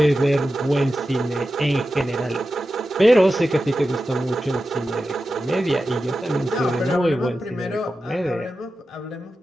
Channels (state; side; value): normal; both; correlation 0.92